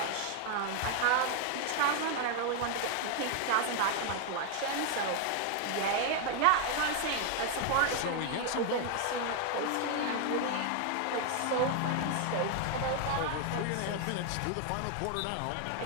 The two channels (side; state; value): both; different; correlation 0.00